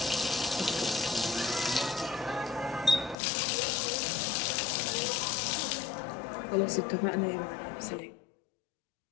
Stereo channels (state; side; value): drops out; right; at 3.2 s